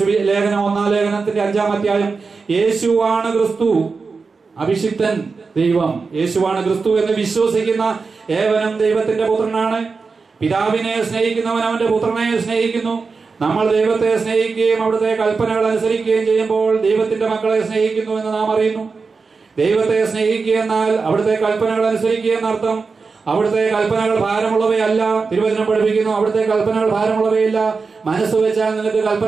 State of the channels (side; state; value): left; quieter; 4.6 dB